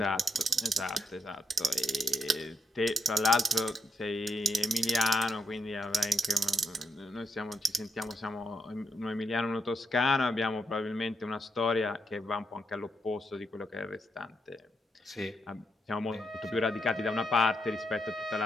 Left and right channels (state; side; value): normal; both; correlation 0.80